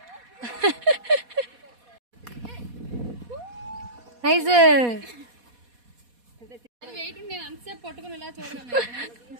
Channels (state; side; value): late; left; 4.2 ms